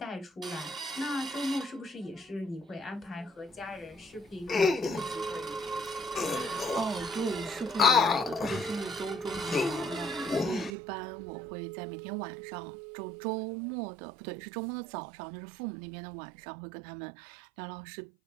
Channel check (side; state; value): left; drops out; at 10.7 s